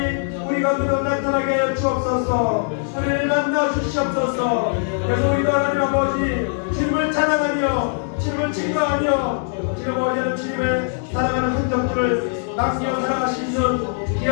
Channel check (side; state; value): right; silent; 62 dB below the other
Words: 우리 가운데 나타나게 하여 주옵소서. 우리를 만나 주시옵소서. 그래서 우리도 하나님 아버지 주님을 찬양하며 주님을 증거하며 지금 어제는 주님의 사랑하는 흔적들을 남겨 살아갈 수 있는